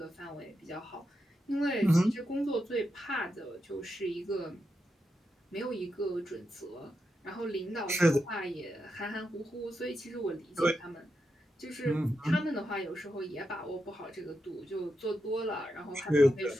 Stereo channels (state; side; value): normal; both; correlation 0.86